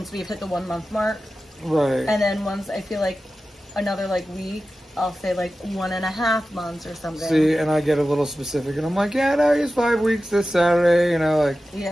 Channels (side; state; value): both; normal; correlation 0.94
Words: we've hit the 1 month mark. Right. And then once I feel like another, like, week, I'll say, like, 1.5 months or something. See, and I get a little specific, and I'm like, yeah, no, he's 5 weeks this Saturday, you know, like.